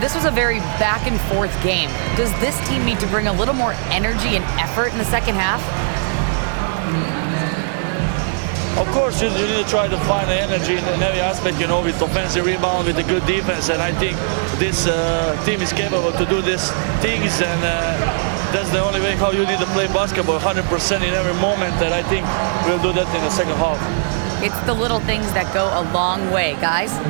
was a very back-and-forth game. Does this team need to bring a little more energy and effort in the second half? Of course, you need to try to find the energy in every aspect, with offensive rebound, with a good defense. And I think this team is capable to do these things. And that's the only way how you need to play basketball, 100% in every moment. And I think we'll do that in the second half. It's the little things that go a long way, guys.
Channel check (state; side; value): silent; left; 67 dB below the other